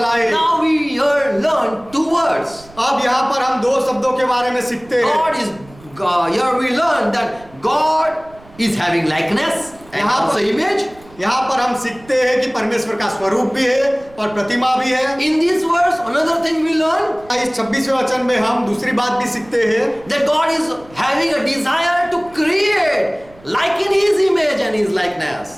Now we here learn two words. अब यहाँ पर हम दो शब्दों के बारे में सीखते हैं। Here we learn that God is having likeness and also image. यहाँ पर हम सीखते हैं कि परमेश्वर का स्वरूप भी है और प्रतिमा भी है। In this verse, another thing we learn इस 26वें वचन में हम दूसरी बात भी सीखते हैं that God is having a desire to create like in His image and His likeness.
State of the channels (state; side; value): noise; right; rumble, 24 dB below the sound